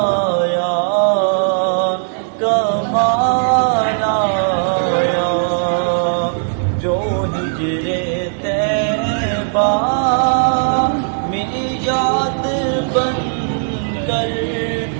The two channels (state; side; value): silent; left; 68 dB below the other